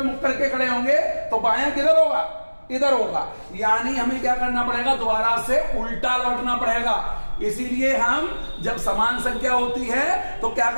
मुख करके खड़े होंगे तो बायां किधर होगा, इधर होगा, यानी हमें क्या करना पड़ेगा, दोबारा से उल्टा लौटना पड़ेगा। इसीलिए हम जब समान संख्या होती है तो क्या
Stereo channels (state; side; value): inverted; both; correlation -1.00